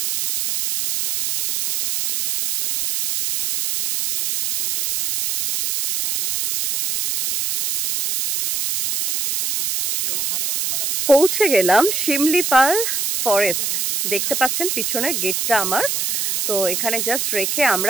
পৌঁছে গেলাম শিমলিপাল ফরেস্ট। দেখতে পাচ্ছেন পিছনে গেটটা আমার। তো এখানে জাস্ট রেখে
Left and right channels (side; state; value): right; noise; hiss, 1 dB below the sound